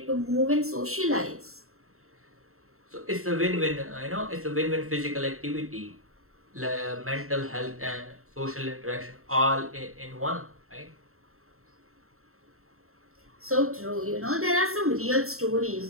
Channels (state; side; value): late; left; 0.63 ms